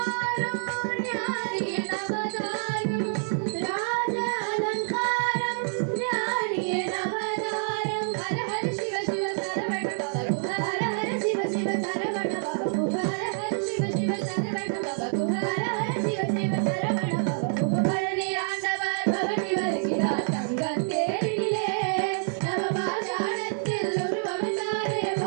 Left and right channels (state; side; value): silent; left; digital silence